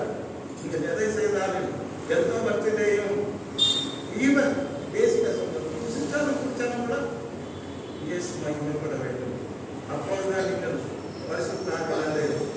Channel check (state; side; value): identical; both; correlation 1.00